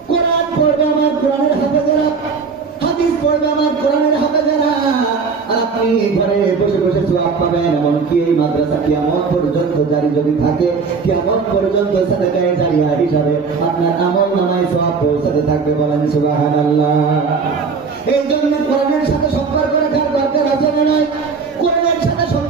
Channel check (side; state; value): left; quieter; 5.1 dB